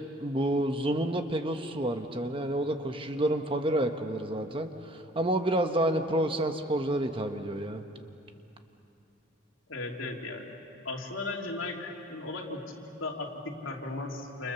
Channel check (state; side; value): normal; both; correlation 0.52